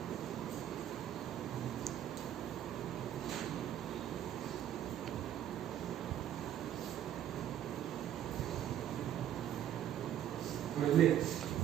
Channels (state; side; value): quieter; left; 10.9 dB